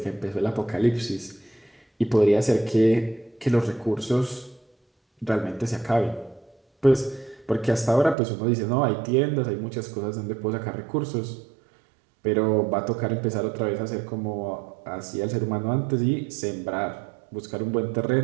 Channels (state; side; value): drops out; left; at 8.2 s